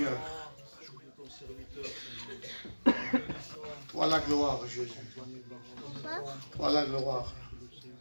Toi la gloire, Jésus. Toi la gloire.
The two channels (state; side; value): inverted; both; correlation -1.00